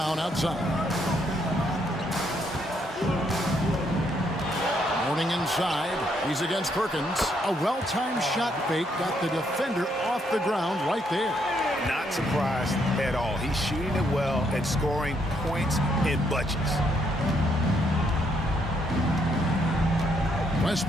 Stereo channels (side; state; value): both; normal; correlation 0.73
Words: outside. Mourning inside. He's against Perkins. A well-timed shot fake got the defender off the ground right there. Not surprised at all. He's shooting it well and scoring points in bunches.